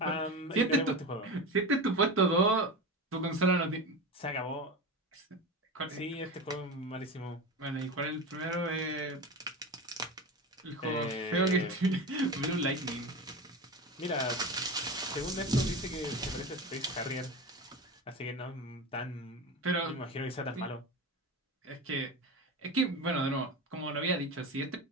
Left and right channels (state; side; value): normal; both; correlation 0.25